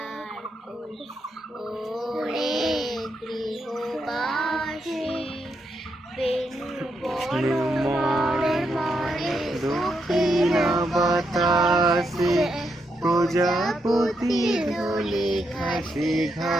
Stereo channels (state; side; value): normal; both; correlation 0.81